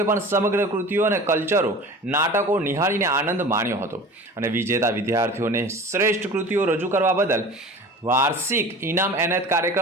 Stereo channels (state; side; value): normal; both; correlation 0.39